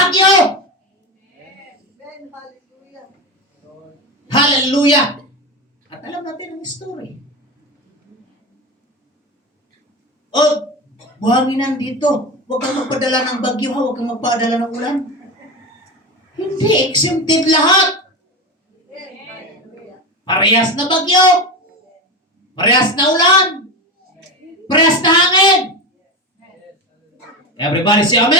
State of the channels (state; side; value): normal; both; correlation 0.22